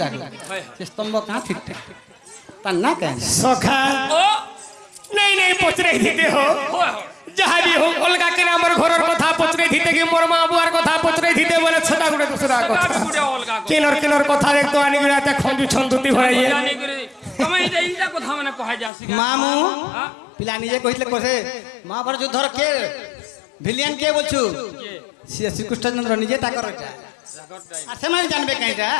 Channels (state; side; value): drops out; right; at 18.9 s